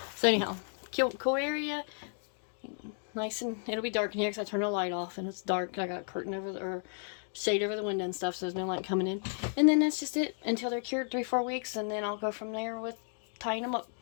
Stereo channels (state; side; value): silent; right; 56 dB below the other